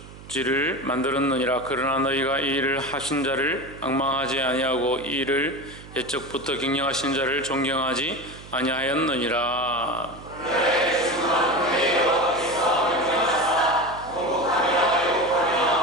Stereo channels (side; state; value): right; noise; hum, 17 dB below the sound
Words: 만들었느니라. 그러나 너희가 이 일을 하신 자를 앙망하지 아니하고 이 일을 옛적부터 경영하신 자를 존경하지 아니하였느니라.